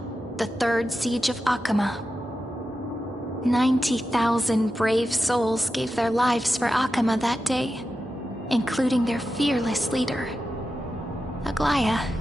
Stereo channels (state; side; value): normal; both; correlation 0.90